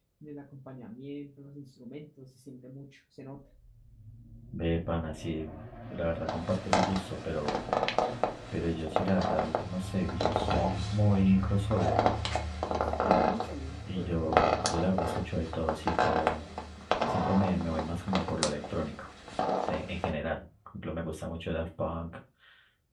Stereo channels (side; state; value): both; identical; correlation 1.00